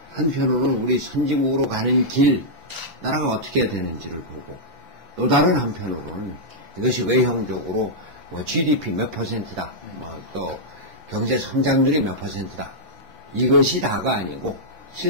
한편으로는 우리 선진국으로 가는 길, 나라가 어떻게 되는지를 보고 또 다른 한편으로는 이것이 외형적으로 GDP 몇 %다, 또 경제 성장률이 몇 %다, 이것이 다가 아니고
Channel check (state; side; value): late; left; 5.9 ms